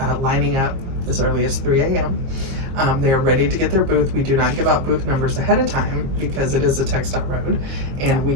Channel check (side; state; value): left; late; 22 ms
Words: lining up as early as 3 a.m. They are ready to get their booth. We do not give out booth numbers ahead of time because it is a TxDOT road and we